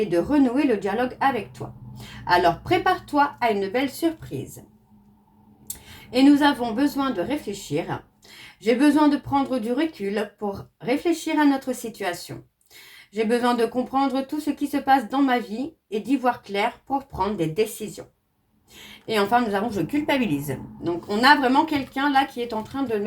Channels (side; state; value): both; identical; correlation 1.00